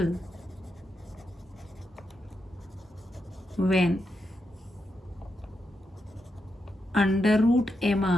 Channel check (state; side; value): normal; both; correlation 0.85